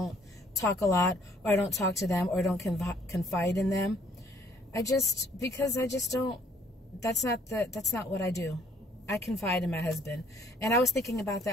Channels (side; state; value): both; normal; correlation 0.63